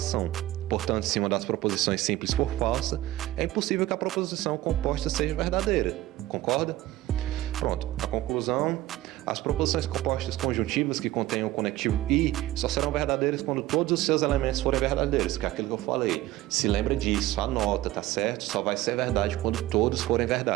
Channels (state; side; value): quieter; left; 15.9 dB